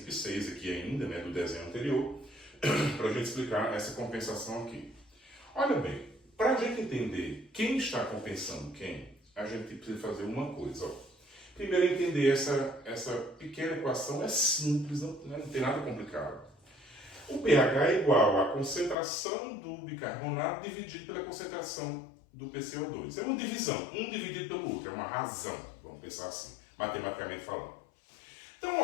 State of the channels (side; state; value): right; drops out; at 18.9 s